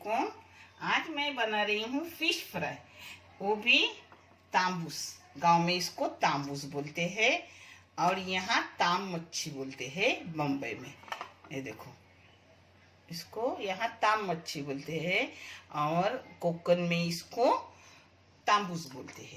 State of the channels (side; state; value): both; identical; correlation 1.00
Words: आज मैं बना रही हूँ फिश फ्राई, वो भी तांबूस। गांव में इसको तांबूस बोलते हैं और यहाँ ताम मच्छी बोलते हैं बम्बई में। ये देखो, इसको यहाँ ताम मच्छी बोलते हैं और कोकन में इसको तांबूस बोलते